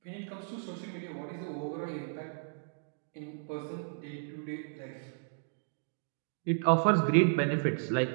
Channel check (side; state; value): left; silent; digital silence